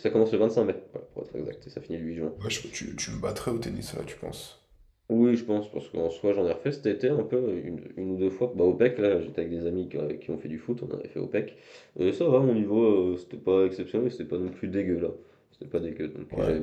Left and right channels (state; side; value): identical; both; correlation 1.00